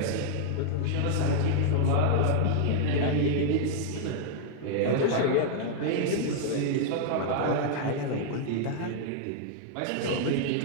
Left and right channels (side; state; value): both; different; correlation -0.01